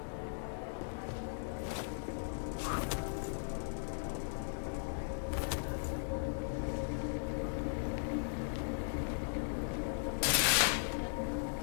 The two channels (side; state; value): right; silent; digital silence